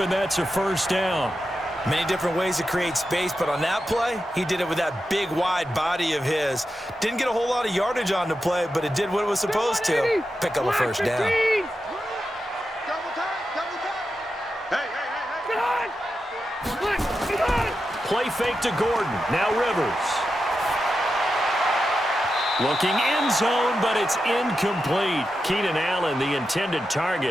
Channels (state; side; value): normal; both; correlation 0.89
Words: that's a first down. Many different ways to create space, but on that play, he did it with that big, wide body of his. Didn't get a whole lot of yardage on the play, but it did what it was supposed to. Pick up a first down. Double time. Hey. Play fake to Gordon. Now Rivers. Looking end zone, but it's incomplete. Keenan Allen, the intended